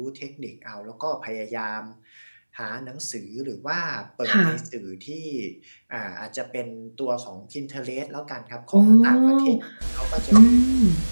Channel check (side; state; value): both; inverted; correlation -1.00